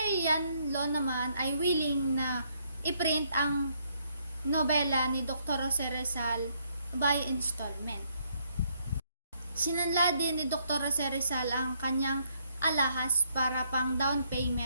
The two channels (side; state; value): both; inverted; correlation -0.72